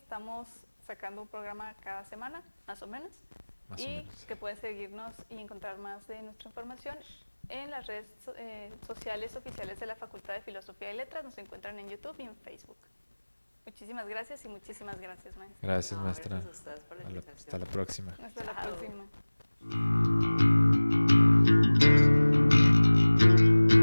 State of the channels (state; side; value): inverted; both; correlation -1.00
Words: sacando un programa cada semana, más o menos. Más o Y menos. que pueden seguirnos y encontrar más de nuestra información en las redes sociales oficiales de la Facultad de Filosofía y Letras. Nos encuentran en YouTube y en Facebook. Muchísimas gracias y muchísimas gracias, maestra. Gracias, No, maestra. gracias a ustedes por la invitación. Hasta la próxima. Hasta la Chao. próxima.